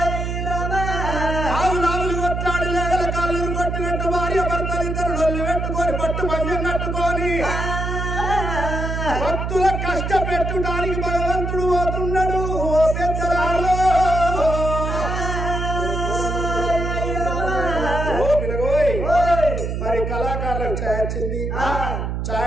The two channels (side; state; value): right; noise; hum, 3 dB below the sound